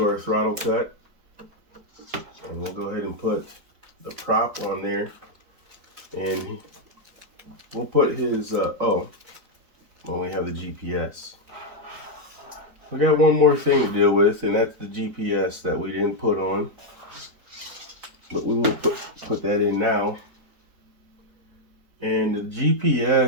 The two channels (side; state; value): left; late; 4.2 ms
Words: our throttle cut. And we'll go ahead and put the prop on there. And we'll put his, we have the GPS. We got one more thing to deal with, and that's the GPS that we didn't put on. But we will put that in now. And the